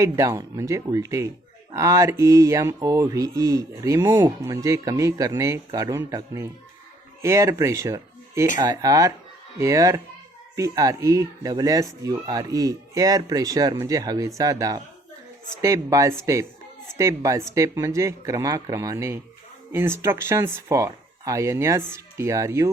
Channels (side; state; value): both; normal; correlation 0.63